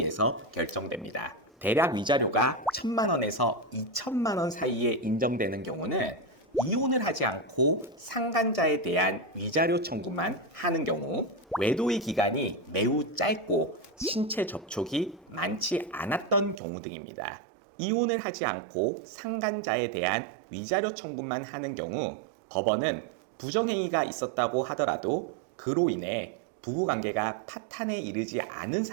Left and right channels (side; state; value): left; drops out; at 16.6 s